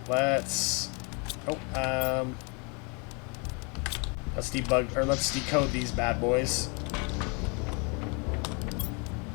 Let's let's debug, or let's decode these bad boys.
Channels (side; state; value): right; quieter; 33.1 dB